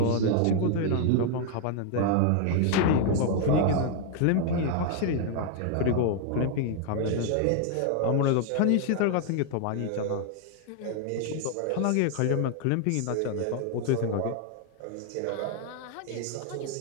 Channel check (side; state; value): both; different; correlation 0.00